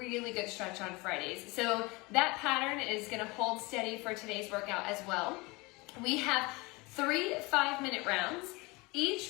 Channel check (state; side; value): quieter; right; 24.7 dB